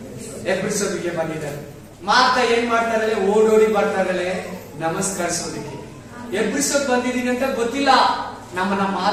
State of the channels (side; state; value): both; identical; correlation 1.00